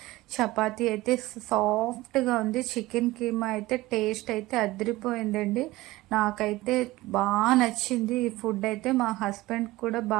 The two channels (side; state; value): left; quieter; 18.8 dB